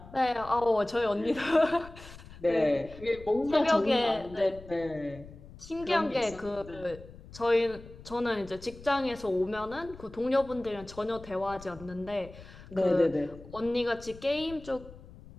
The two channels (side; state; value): left; noise; rumble, 18 dB below the sound